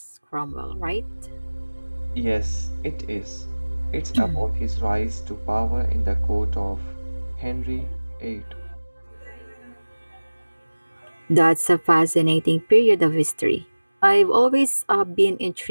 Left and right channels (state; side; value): inverted; both; correlation -1.00